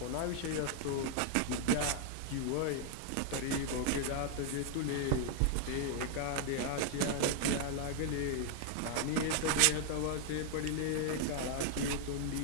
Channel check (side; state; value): both; different; correlation 0.00